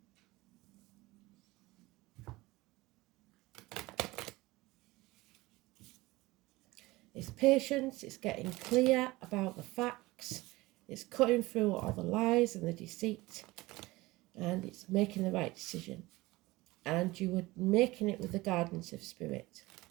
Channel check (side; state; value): left; quieter; 20.3 dB